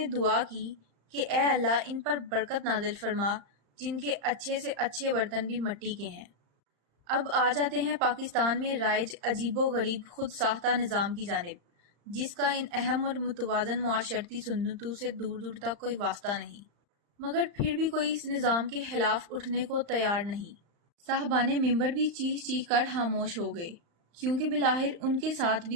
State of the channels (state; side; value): late; left; 35 ms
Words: دعا کی کہ اے اللہ ان پر برکت نازل فرما جن کے اچھے سے اچھے برتن بھی مٹی کے ہیں۔ اب آ جاتے ہیں پاکستان میں رائج عجیب و غریب خود ساختہ نظام کی جانب، جس کا ان اہم اور متوازن معاشرتی سنتوں سے دور دور تک کوئی واسطہ نہیں، مگر پھر بھی کوئی اس نظام کے خلاف اٹھنے کو تیار نہیں۔ صاحبان ممبر بھی چیخ چیخ کر خاموش ہو گئے، کیونکہ بالآخر ان کے ساتھ